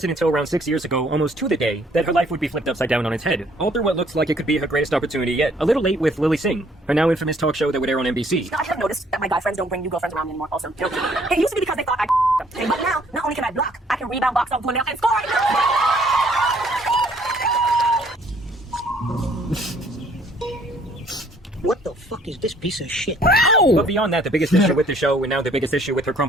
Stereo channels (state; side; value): normal; both; correlation 0.62